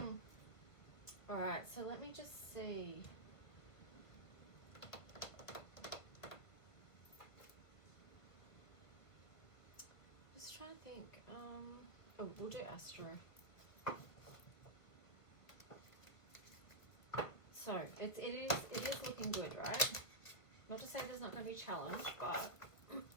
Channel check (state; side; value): late; right; 1.4 ms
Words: Alright, so let me just see. Just trying to think. Oh, we'll do Astro. So it is looking good, right? Not to say there's not going to be a challenge, but